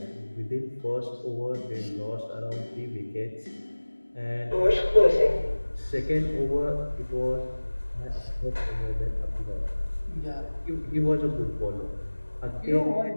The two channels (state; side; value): inverted; both; correlation -1.00